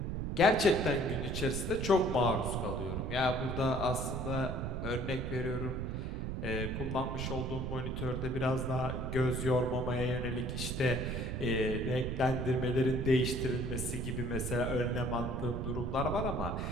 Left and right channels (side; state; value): right; noise; rumble, 3 dB below the sound